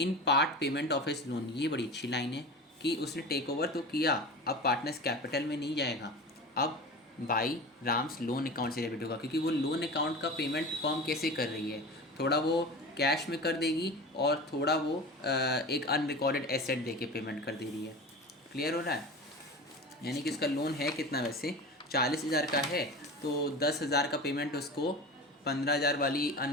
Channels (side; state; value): both; normal; correlation 0.31